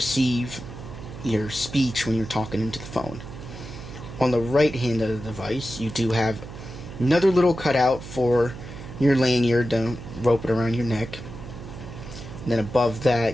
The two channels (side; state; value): right; noise; hum, 13 dB below the sound